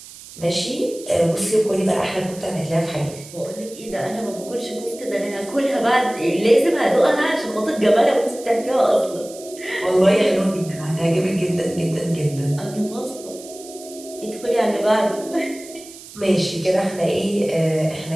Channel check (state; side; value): noise; right; hiss, 17 dB below the sound